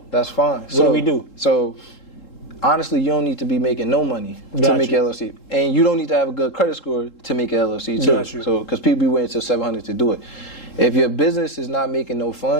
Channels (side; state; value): right; late; 3.7 ms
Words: That's fine. What do we do? So honestly, you don't need to be making no money to make an LLC. And you don't need to have a good credit score to make an LLC too. So, because people be waiting till 700 to do it. If your business is not making no